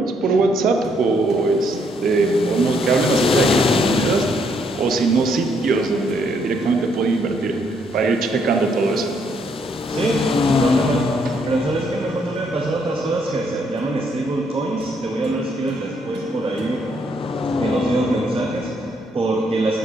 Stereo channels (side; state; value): both; normal; correlation 0.72